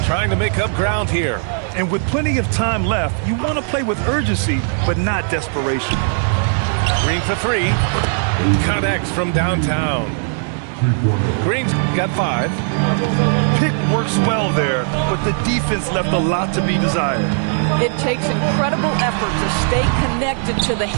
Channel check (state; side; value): silent; left; 66 dB below the other